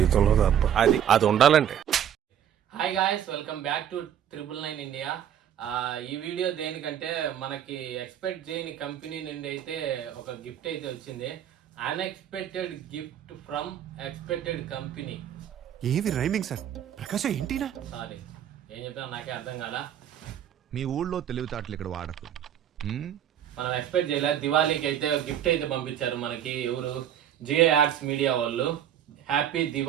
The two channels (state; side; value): quieter; left; 9.9 dB